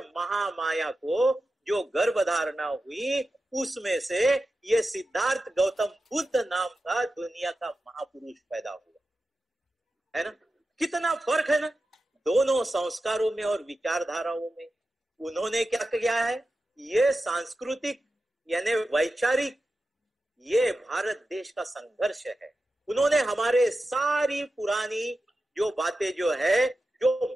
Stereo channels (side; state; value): both; normal; correlation 0.92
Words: महामाया को जो गर्भधारणा हुई उसमें से ये सिद्धार्थ गौतम बुद्ध नाम का दुनिया का महापुरुष पैदा हुआ, है ना। कितना फर्क है ना दोनों संस्कारों में और विचारधाराओं में। उन्होंने क्या किया है, ये सांस्कृतिक यानी वैचारिक, ये भारत देश का संघर्ष है। उन्होंने हमारे सारी पुरानी जो बातें जो है,